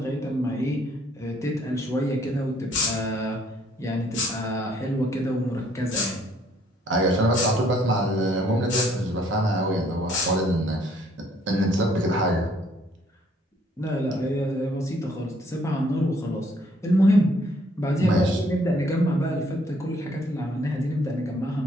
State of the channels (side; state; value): both; normal; correlation 0.64